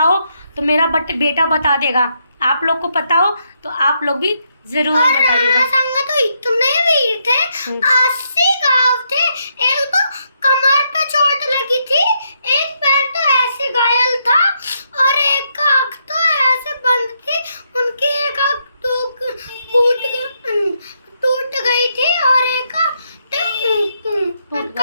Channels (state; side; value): inverted; both; correlation -0.78